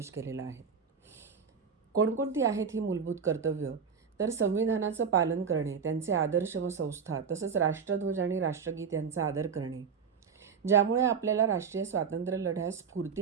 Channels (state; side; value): quieter; left; 6.3 dB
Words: केलेला आहे. कोणकोणती आहेत ही मूलभूत कर्तव्य? तर संविधानाचं पालन करणे, त्यांचे आदर्श व संस्था, तसंच राष्ट्रध्वज आणि राष्ट्रगीत यांचा आदर करणे, ज्यामुळे आपल्याला राष्ट्रीय स्वातंत्र्य लढ्यास